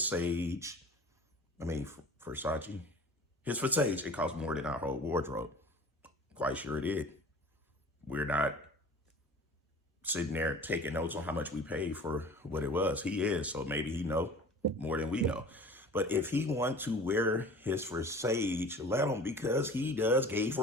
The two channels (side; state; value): both; normal; correlation 0.42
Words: Versace. His for Sage, it cost more than our whole wardrobe. Quite sure it did. We're not sitting there taking notes on how much we paid for what it was. He is, so maybe he know more than we know. But if he want to wear his for Sage, let him, because he does gay